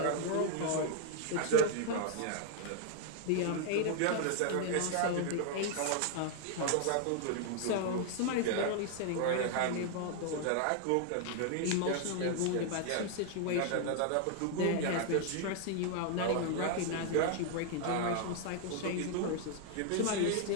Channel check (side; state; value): both; different; correlation 0.00